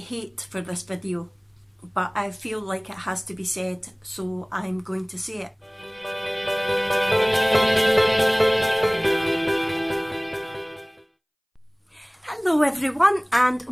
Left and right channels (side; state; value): both; identical; correlation 1.00